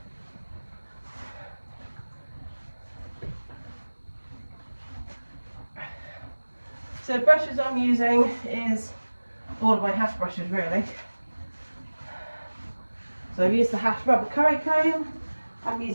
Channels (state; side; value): inverted; both; correlation -1.00